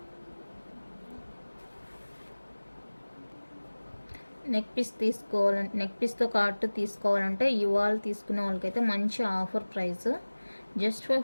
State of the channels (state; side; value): inverted; both; correlation -1.00